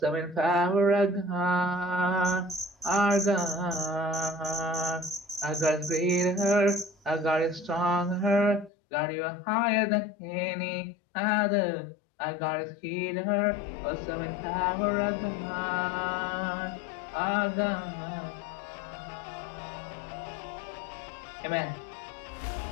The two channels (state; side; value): drops out; right; at 8.7 s